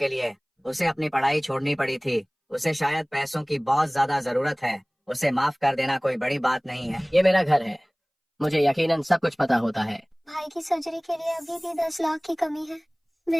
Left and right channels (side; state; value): both; identical; correlation 1.00